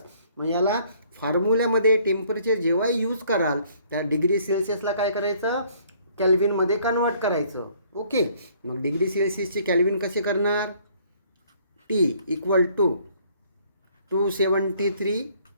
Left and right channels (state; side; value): inverted; both; correlation -0.61